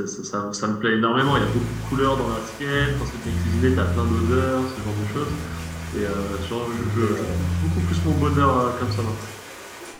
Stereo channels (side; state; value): both; identical; correlation 1.00